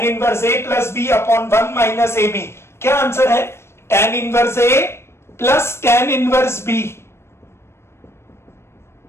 inverse a plus b upon 1 minus ab। क्या आंसर है? tan inverse a plus tan inverse b।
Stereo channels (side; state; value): right; late; 0.12 ms